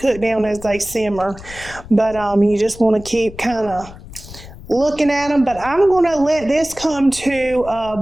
cook down as they simmer. But you just want to keep kind of looking at them, but I'm going to let this come to a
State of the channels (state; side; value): noise; left; rumble, 17 dB below the sound